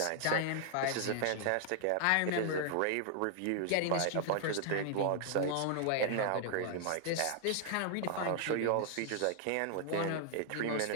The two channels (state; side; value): different; both; correlation 0.00